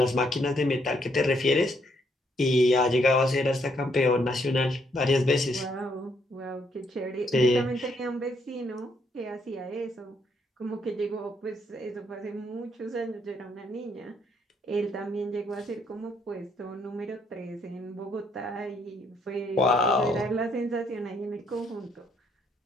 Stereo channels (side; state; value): both; normal; correlation 0.71